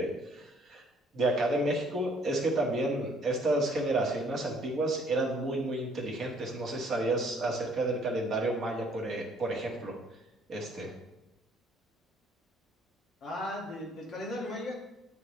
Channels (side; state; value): both; normal; correlation 0.61